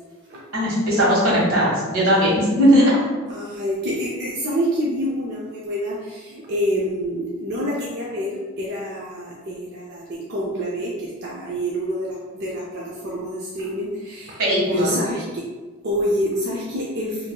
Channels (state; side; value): normal; both; correlation 0.37